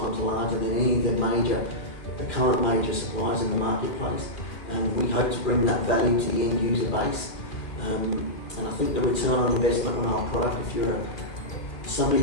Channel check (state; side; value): late; right; 2.2 ms